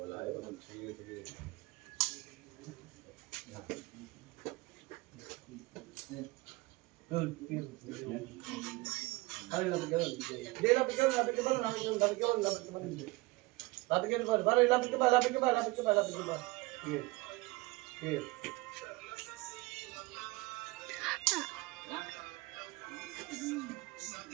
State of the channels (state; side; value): quieter; left; 22.9 dB